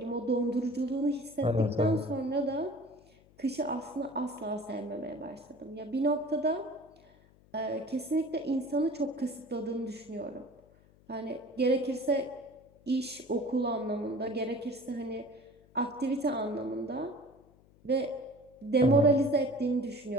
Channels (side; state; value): left; noise; hum, 28 dB below the sound